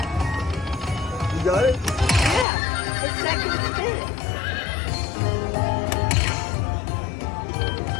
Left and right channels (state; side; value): drops out; right; at 2.5 s